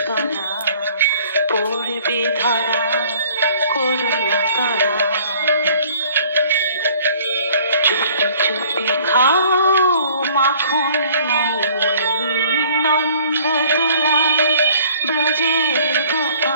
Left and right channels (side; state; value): both; inverted; correlation -0.55